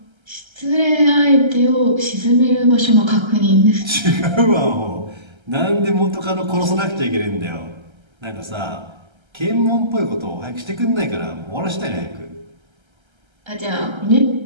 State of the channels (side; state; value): left; late; 1.3 ms